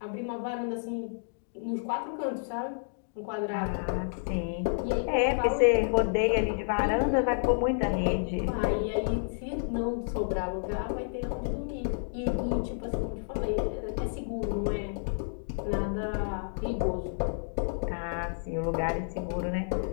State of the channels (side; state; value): right; silent; digital silence